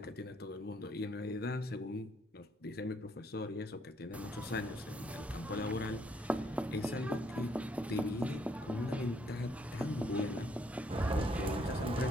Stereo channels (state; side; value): normal; both; correlation 0.70